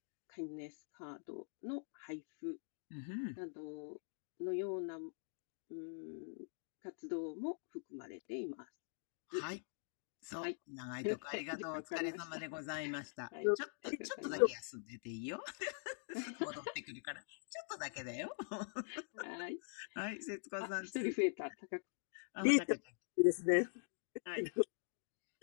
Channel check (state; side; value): silent; right; digital silence